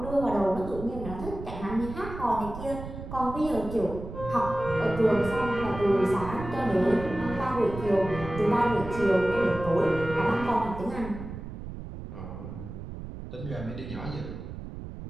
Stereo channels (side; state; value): right; noise; rumble, 10 dB below the sound